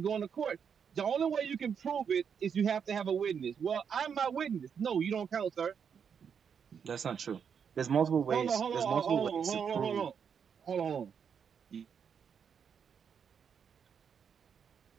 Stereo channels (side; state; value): left; quieter; 7.1 dB